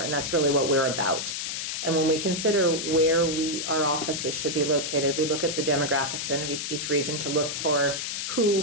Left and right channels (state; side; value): noise; left; hiss, 3 dB below the sound